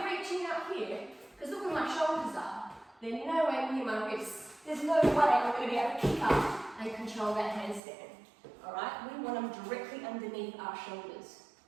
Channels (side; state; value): left; drops out; at 7.8 s